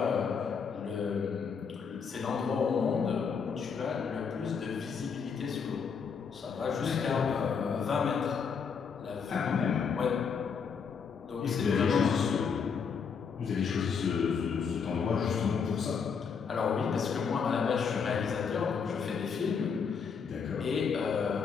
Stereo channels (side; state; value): right; quieter; 6.1 dB